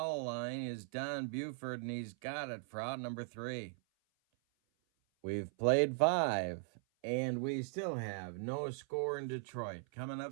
line is Don Buford, and he's got it for out number 3. We've played 5, and we still have no score in Detroit. Coming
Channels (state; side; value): silent; left; 52 dB below the other